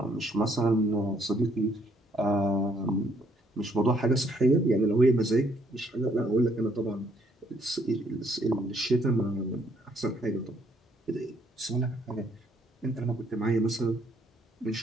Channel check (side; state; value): both; normal; correlation 0.68